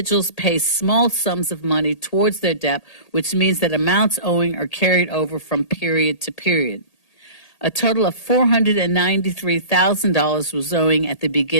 pay small sums of money towards their debt, which means that amounts owing are carried over from period to period. A total of $493,000 was owing at the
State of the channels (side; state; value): right; late; 1.8 ms